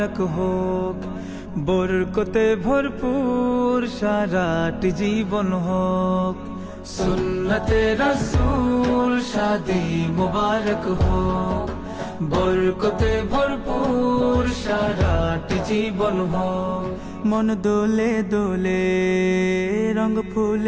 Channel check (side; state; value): both; identical; correlation 1.00